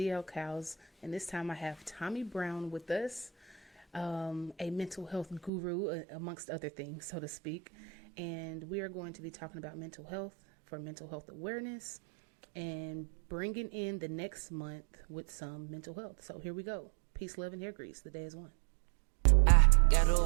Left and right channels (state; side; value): drops out; left; at 5.5 s